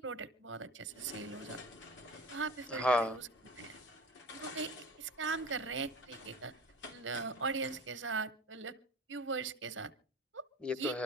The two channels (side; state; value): both; normal; correlation 0.35